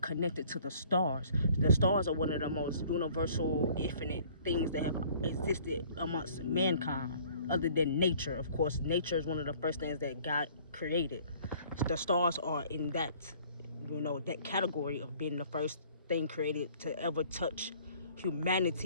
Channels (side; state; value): both; inverted; correlation -0.55